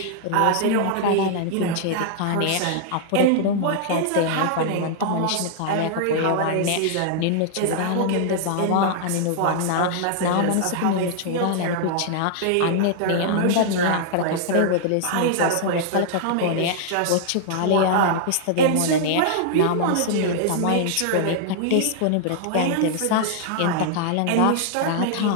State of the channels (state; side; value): different; both; correlation -0.01